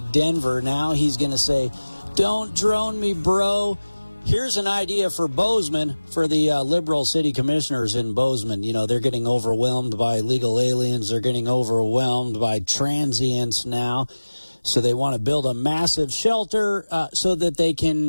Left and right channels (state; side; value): inverted; both; correlation -1.00